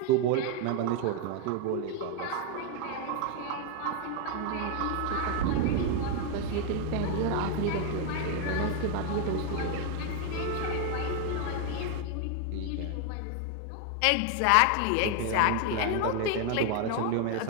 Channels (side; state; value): both; different; correlation 0.01